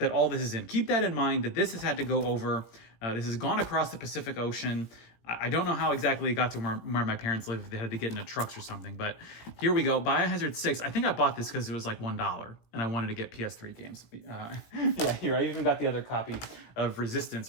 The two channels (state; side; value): late; right; 18 ms